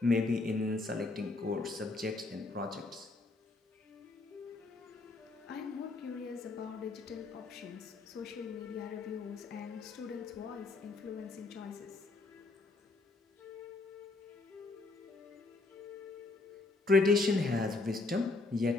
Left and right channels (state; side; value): quieter; right; 3.4 dB